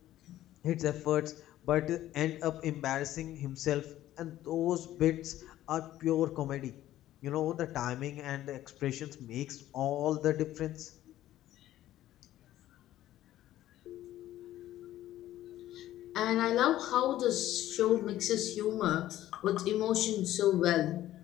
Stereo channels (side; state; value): right; quieter; 13.7 dB